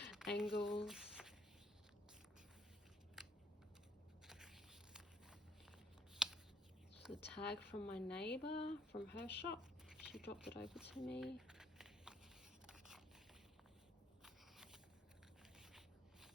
angles. Just a tag from my neighbour from her shop. She dropped it over to me.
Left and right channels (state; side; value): normal; both; correlation 0.67